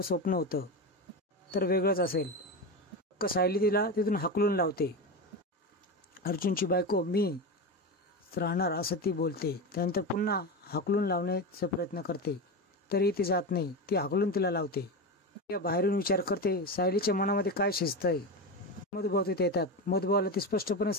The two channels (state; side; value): normal; both; correlation 0.20